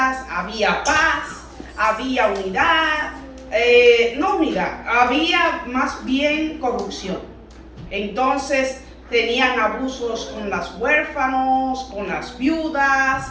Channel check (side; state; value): both; identical; correlation 1.00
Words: había paz, había unidad, no unidad, había más bien corrupción. Entonces tenían abusos con los huérfanos, con las